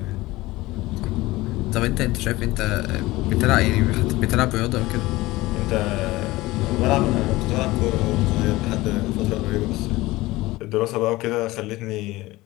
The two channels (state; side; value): quieter; right; 19.3 dB